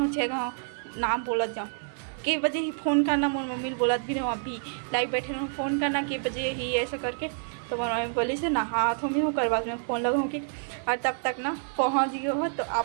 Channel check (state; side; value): silent; left; digital silence